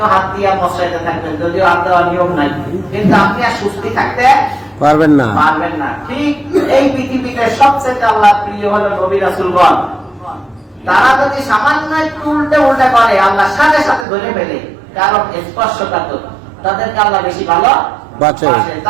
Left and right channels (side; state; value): left; drops out; at 14.1 s